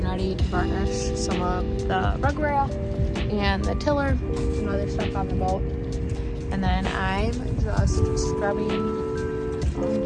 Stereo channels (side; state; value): both; identical; correlation 1.00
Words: ready to varnish some of the rug rail and the tiller and other stuff on the boat. And then I'm just scrubbing